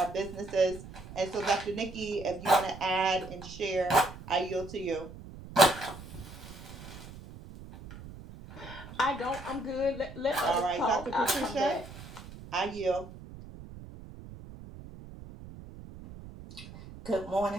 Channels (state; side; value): noise; right; rumble, 15 dB below the sound